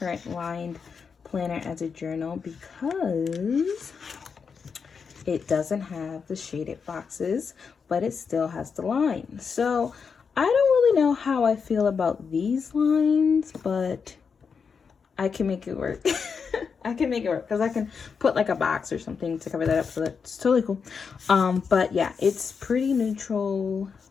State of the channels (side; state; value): right; quieter; 5.9 dB